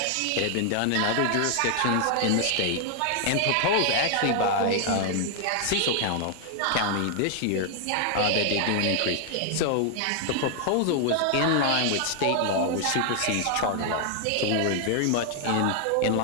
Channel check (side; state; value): both; different; correlation 0.00